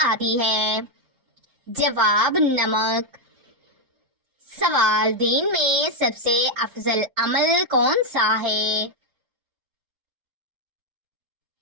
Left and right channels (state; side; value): late; left; 4.4 ms